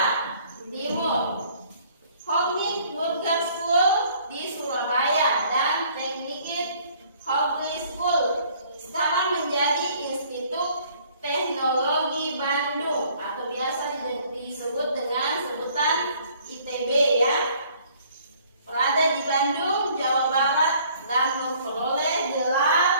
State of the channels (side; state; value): both; inverted; correlation -0.58